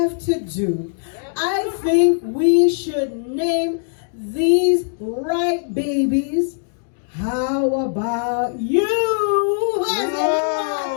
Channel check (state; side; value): silent; right; digital silence